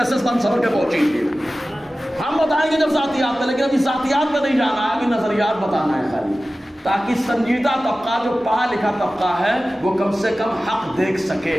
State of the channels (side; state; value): both; normal; correlation 0.96